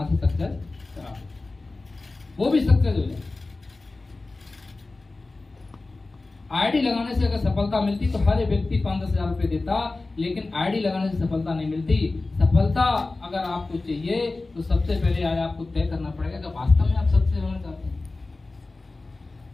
से सक्सेस करा, वो भी सक्सेस हो जाए। आईडी लगाने से अगर सफलता मिलती तो हर व्यक्ति 5-10 हजार रुपये देता, लेकिन आईडी लगाने से सफलता नहीं मिलती। सफलता अगर आपको चाहिए तो सबसे पहले आज आपको तय करना पड़ेगा कि वास्तव में आप सक्सेस होना चाहते हैं।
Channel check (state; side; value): quieter; right; 3.3 dB